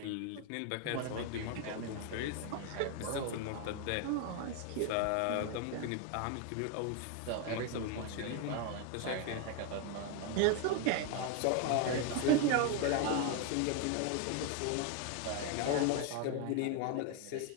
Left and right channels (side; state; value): both; different; correlation 0.01